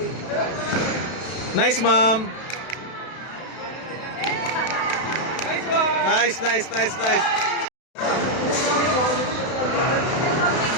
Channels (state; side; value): late; right; 32 ms